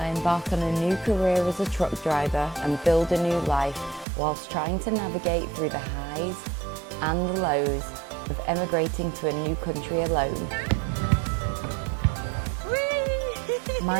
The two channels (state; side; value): drops out; left; at 4.0 s